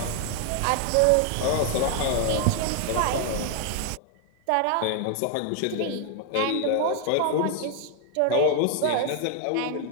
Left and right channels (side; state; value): both; different; correlation 0.00